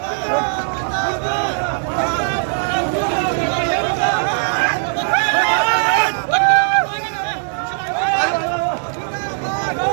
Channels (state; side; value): silent; left; 67 dB below the other